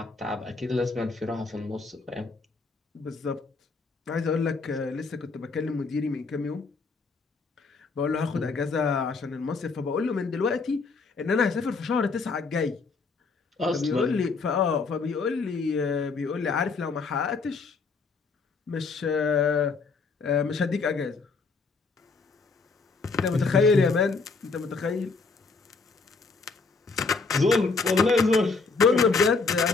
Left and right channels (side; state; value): right; quieter; 4.3 dB